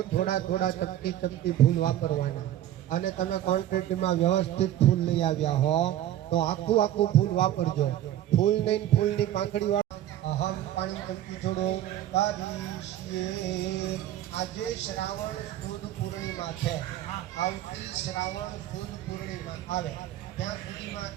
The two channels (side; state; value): left; quieter; 12.5 dB